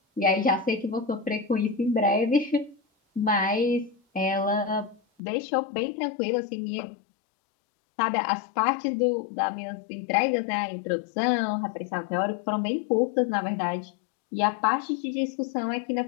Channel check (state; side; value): drops out; right; at 5.0 s